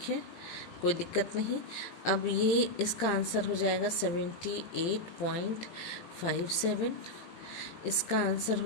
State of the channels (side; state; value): right; late; 18 ms